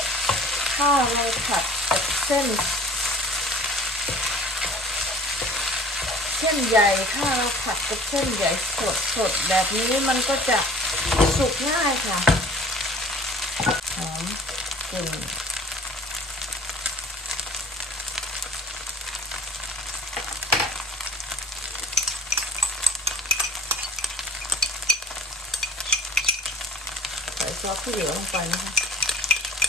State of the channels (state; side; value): normal; both; correlation 0.46